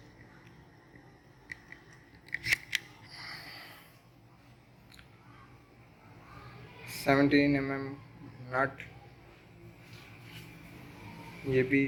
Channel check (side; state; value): both; identical; correlation 1.00